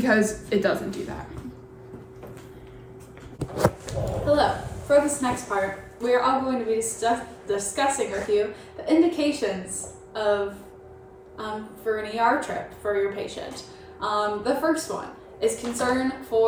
it doesn't do that. Hello. For this next part, we are all going to be discussing with you the indications of for an ER trip for your patient. The first one is concern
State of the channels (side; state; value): both; identical; correlation 1.00